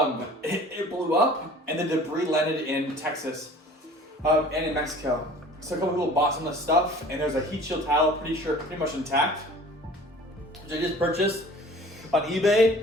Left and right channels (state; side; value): normal; both; correlation 0.47